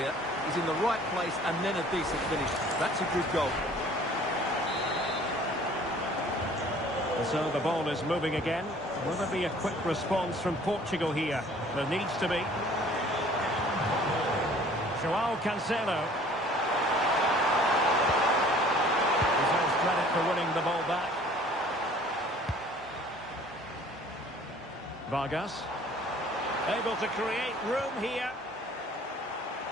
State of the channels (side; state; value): both; normal; correlation 0.52